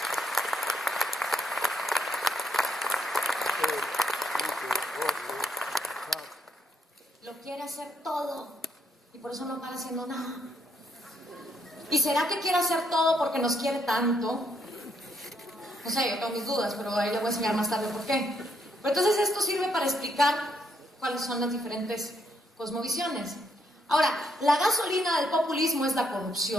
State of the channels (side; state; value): both; normal; correlation 0.74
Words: Lo quiere hacer todo y por eso no para haciendo nada. ¿Y será que quiere hacer todo porque nos quiere tanto? No sé, yo tengo mis dudas, pero ahí le voy a enseñar más tarde por qué. Pero entonces esto sirve para explicar cuáles son las diferentes cosmovisiones. Ahora, la gasolina del populismo es la